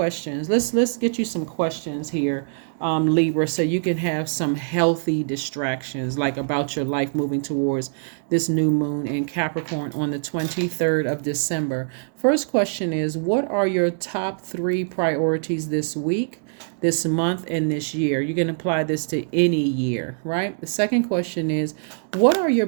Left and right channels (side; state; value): left; silent; digital silence